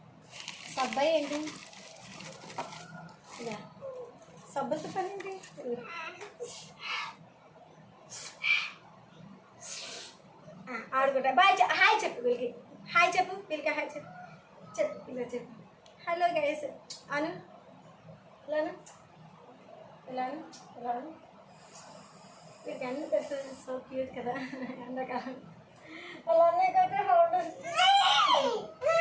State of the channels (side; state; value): both; identical; correlation 1.00